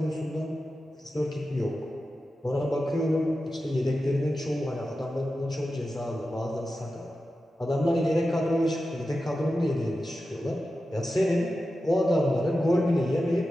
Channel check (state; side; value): normal; both; correlation 0.92